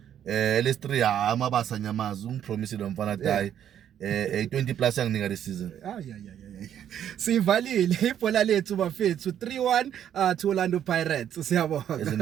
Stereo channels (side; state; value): left; quieter; 10.0 dB